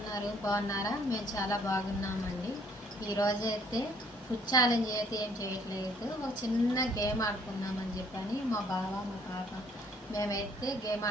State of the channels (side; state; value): both; normal; correlation 0.62